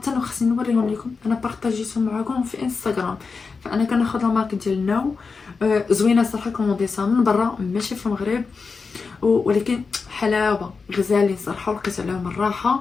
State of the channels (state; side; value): quieter; right; 4.8 dB